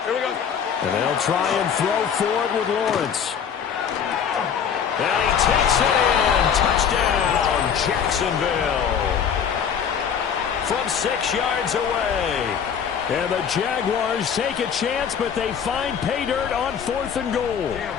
Here we go. And they'll try and throw for it with Lawrence. And he takes it in. Touchdown, Jacksonville. From 6 yards away. And the Jaguars take a chance, but they find pay dirt on 4th and goal.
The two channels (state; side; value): quieter; right; 7.6 dB